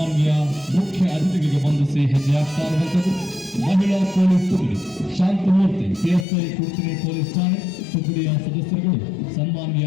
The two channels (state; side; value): drops out; right; at 6.2 s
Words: ಮುಖ್ಯ ಅತಿಥಿಗಳಿಗೆ ವಂದಿಸಿ ಹೆಜ್ಜೆ ಹಾಕ್ತಾ ಇರುವಂತದ್ದು. ಮಹಿಳಾ ಪೊಲೀಸ್ ತುಗುಡಿ ಶಾಂತಮೂರ್ತಿ ಪಿಎಸ್ಐ ಕುರ್ತಿನಿ ಪೊಲೀಸ್ ಠಾಣೆ ತುಗುಡಿಯ ಸದಸ್ಯರುಗಳು ಸನ್ಮಾನ್ಯ